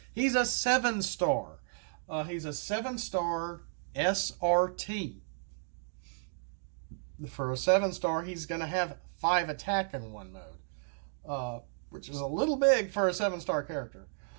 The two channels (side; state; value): left; silent; digital silence